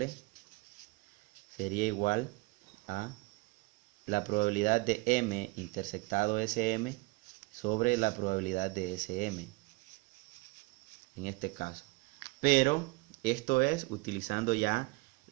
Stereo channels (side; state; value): left; quieter; 24.3 dB